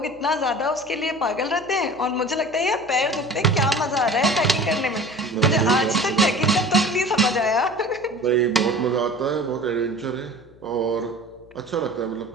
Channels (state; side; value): noise; left; hum, 26 dB below the sound